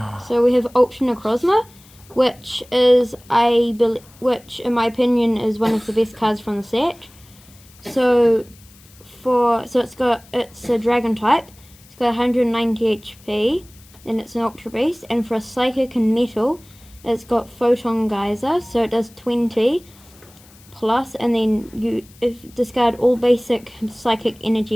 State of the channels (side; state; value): left; noise; hiss, 26 dB below the sound